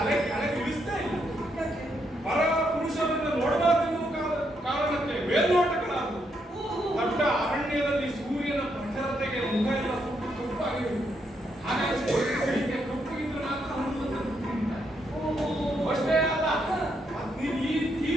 ಕೆಳಗೆ ಇಳಿಸ್ತೇ ಇಲ್ಲ. ಯಾಕೆ? ಪರ ಪುರುಷರನ್ನು ನೋಡಬಾರದೆನ್ನುವ ಕಾರಣಕ್ಕೆ ಮೇಲ್ನೋಟಗಳಾದವು. ದೊಡ್ಡ ಅರಣ್ಯದಲ್ಲಿ ಸೂರ್ಯನ ಪ್ರಖರತೆಗೆ ಮುಖ ಎಲ್ಲ ಸುಟ್ಟು ಕಪ್ಪಾಗಿದೆ. ಹಾಗಾಗಿ ಸೀತೆ ಕಪ್ಪಗಿದ್ರು ಮಾತ್ರ ಹನುಮಂತನ ತಿಂತಾರೆ. ಅಷ್ಟೇ ಅಲ್ಲ, ನೀನು ಈ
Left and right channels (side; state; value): both; normal; correlation 0.78